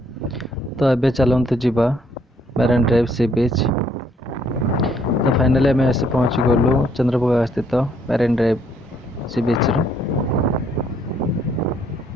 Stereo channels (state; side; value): normal; both; correlation 0.67